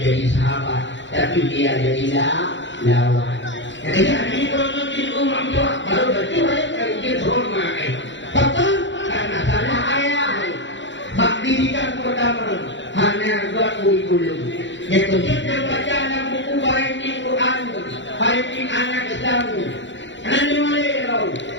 sahabat, tapi dia jadi lawan. Ketika ini kalau di rumah tua, baru berjuang kerja hormat. Betul, karena salah ayah. Bak didikan pertama hanya buat kurikulum. Yang kedua baca dalam buku parenting Quran, parenting anak Islam. Nanti mulai tahu.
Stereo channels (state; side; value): late; right; 0.54 ms